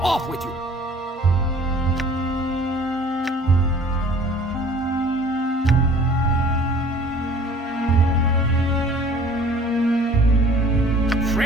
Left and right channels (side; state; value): both; normal; correlation 0.50